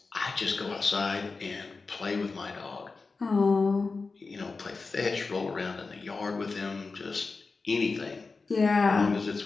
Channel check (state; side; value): quieter; right; 4.2 dB